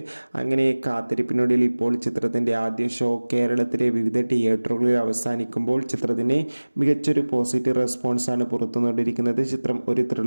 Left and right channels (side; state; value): both; inverted; correlation -1.00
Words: അങ്ങനെ കാത്തിരിപ്പിനൊടുവിൽ ഇപ്പോൾ ചിത്രത്തിൻ്റെ ആദ്യ ഷോ കേരളത്തിലെ വിവിധ തിയേറ്ററുകളിൽ അവസാനിക്കുമ്പോൾ ചിത്രത്തിന് മികച്ചൊരു പോസിറ്റീവ് റെസ്പോൺസാണ് പുറത്തുകൊണ്ടിരിക്കുന്നത്. ചിത്രം ഒരു